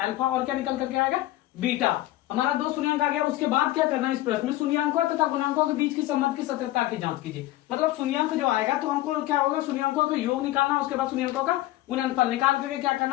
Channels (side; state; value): right; quieter; 16.1 dB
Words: और क्या निकल करके आएगा, बीटा। हमारा 2 शून्यंक आ गया। उसके बाद क्या करना है, इस प्रश्न में शून्यंकों तथा गुणांकों के बीच के संबंध की सत्यता की जांच कीजिए। मतलब शून्यंक जो आएगा तो हमको क्या होगा, शून्यंकों का योग निकालना, उसके बाद शून्यंकों का गुणनफल निकाल करके क्या